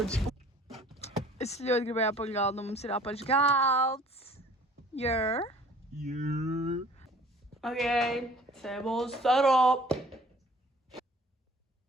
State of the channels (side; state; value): both; normal; correlation 0.51